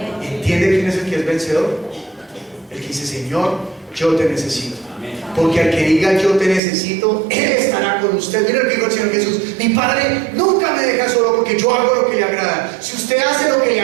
¿Entiende quién es el que es vencedor? El que dice: Señor, yo te necesito. Porque al que diga: yo te necesito, Él estará con usted. Mira lo que dijo el Señor Jesús: mi Padre nunca me deja solo, porque yo hago lo que le agrada. Si usted hace lo que le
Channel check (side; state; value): left; drops out; at 6.6 s